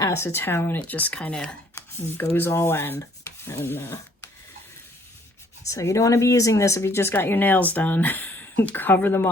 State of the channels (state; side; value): normal; both; correlation 0.62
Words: it just kind of goes all in. And so you don't want to be using this if you just got your nails done. Cover them